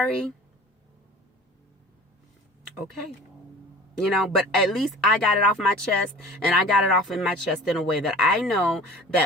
okay. But at least I got it off my chest, and I got it off in my chest in a way that I know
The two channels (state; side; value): normal; both; correlation 0.42